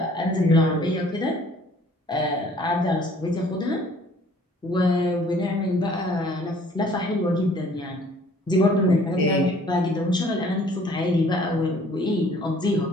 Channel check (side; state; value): both; normal; correlation 0.56